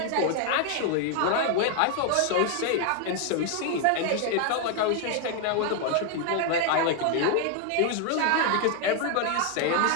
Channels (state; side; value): different; both; correlation 0.01